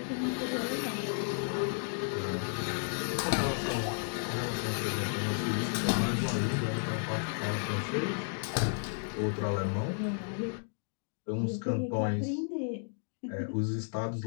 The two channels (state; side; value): silent; right; digital silence